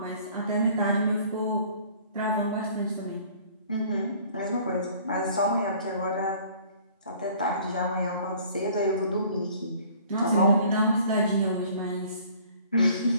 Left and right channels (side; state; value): both; inverted; correlation -0.53